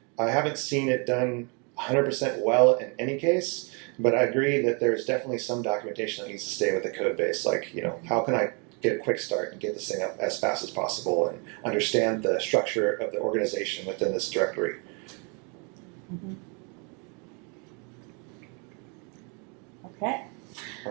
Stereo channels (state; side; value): quieter; left; 34.8 dB